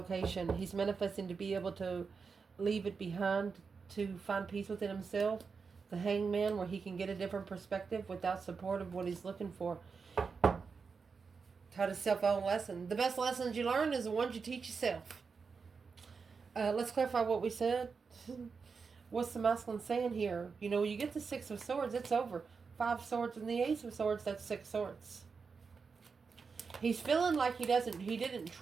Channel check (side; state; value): left; quieter; 5.2 dB